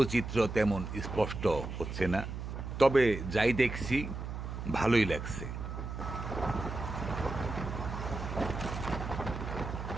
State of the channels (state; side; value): noise; right; hum, 6 dB below the sound